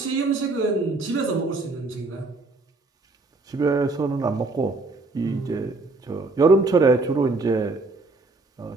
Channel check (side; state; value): left; quieter; 3.4 dB